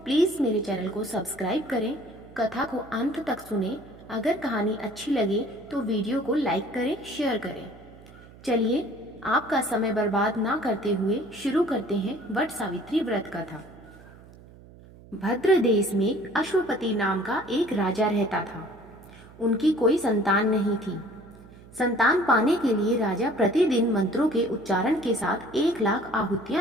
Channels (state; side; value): noise; right; hum, 21 dB below the sound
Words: मेरे चैनल को सब्सक्राइब करें, कथा को अंत तक सुने। अगर कहानी अच्छी लगे तो वीडियो को लाइक करें, शेयर करें। चलिए आपका समय बर्बाद ना करते हुए शुरू करते हैं वट सावित्री व्रत कथा। भद्र देश में अश्वपति नाम का एक राजा रहता था। उनकी कोई संतान नहीं थी। संतान पाने के लिए राजा प्रतिदिन मंत्रों के उच्चारण के साथ 1,00,000